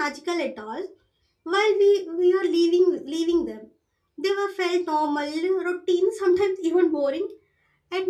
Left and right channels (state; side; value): identical; both; correlation 1.00